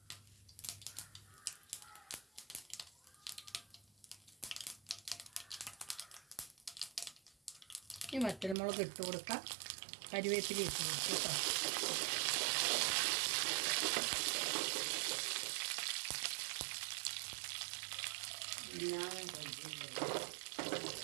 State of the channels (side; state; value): left; drops out; at 8.6 s